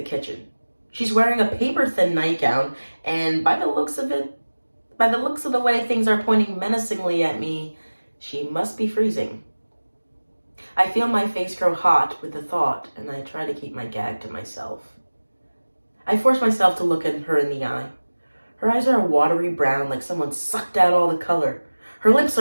kitchen. She's wearing a paper-thin nightgown, and by the looks of the way things are pointing menacingly at me, she must be freezing. I feel my face grow hot with the thought, and I try to keep my gag to myself. I force myself to look at her in the eye. Her eyes are a watery brown, like someone sucked out all the color. Her lips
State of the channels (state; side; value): inverted; both; correlation -1.00